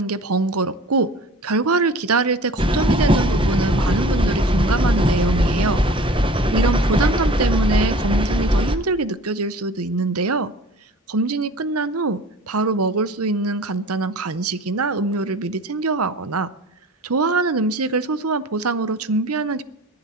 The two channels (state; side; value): normal; both; correlation 0.43